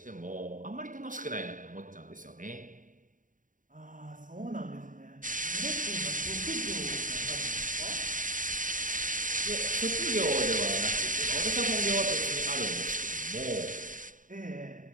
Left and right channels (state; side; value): late; left; 0.38 ms